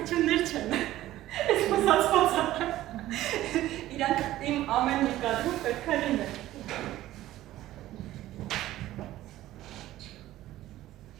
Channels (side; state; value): left; quieter; 14.8 dB